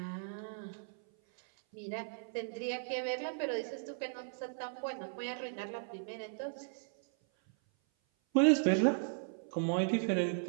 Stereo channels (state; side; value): silent; left; 54 dB below the other